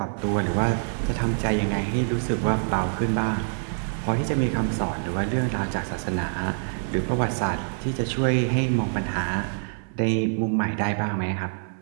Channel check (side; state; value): left; silent; 61 dB below the other